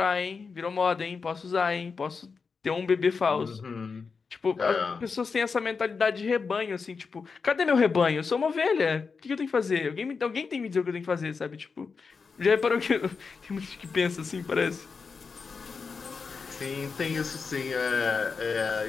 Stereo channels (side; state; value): right; quieter; 5.1 dB